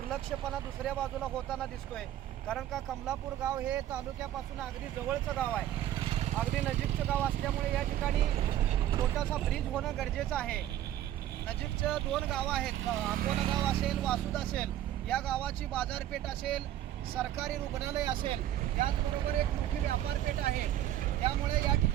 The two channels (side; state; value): left; quieter; 12.4 dB